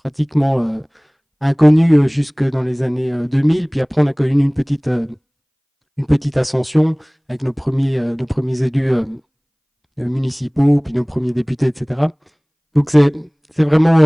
inconnus jusque dans les années 2000. Puis après, on a connu une petite ascension avec nos premiers élus municipaux, puis nos premiers députés, etc. Donc c'est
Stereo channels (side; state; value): both; identical; correlation 1.00